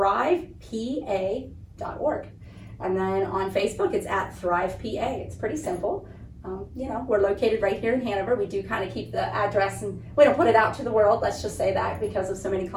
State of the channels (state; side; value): identical; both; correlation 1.00